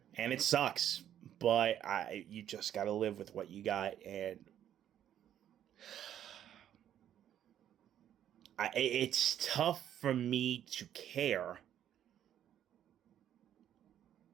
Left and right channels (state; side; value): quieter; left; 10.6 dB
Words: And it sucks, but you just got to live with what you got. And it's tough for me to care